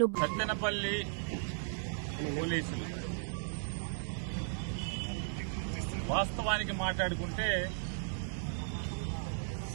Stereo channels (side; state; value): left; silent; digital silence